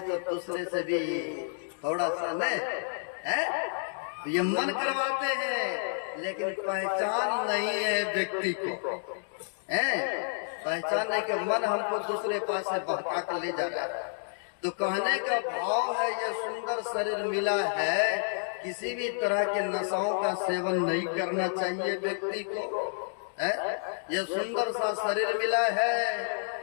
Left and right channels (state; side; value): silent; right; digital silence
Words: तो दूसरे से भी थोड़ा सा न तो ये मन करवाते हैं, लेकिन पहचान नहीं है व्यक्ति को। पहचान नहीं कि मन हमको दूसरे पास से बहका कर ले जा रहा है। तो कहने का भाव है, यह सुंदर शरीर मिला है, किसी भी तरह के नशाओं का सेवन नहीं करना चाहिए व्यक्ति को। यह सुंदर सा शरीर मिला है,